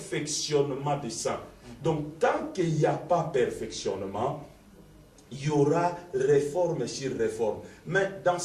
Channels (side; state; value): both; identical; correlation 1.00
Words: des saints. Donc, tant qu'il n'y a pas perfectionnement, il y aura réforme sur réforme. Mais dans